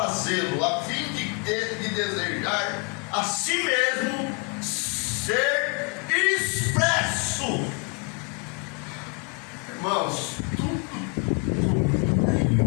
a fim de desejar a si mesmo ser expresso. Irmãos, tudo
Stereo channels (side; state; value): right; quieter; 34.8 dB